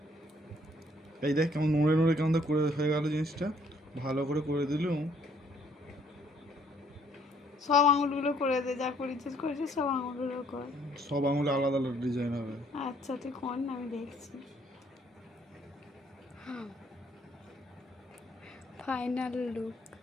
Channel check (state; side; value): normal; both; correlation 0.64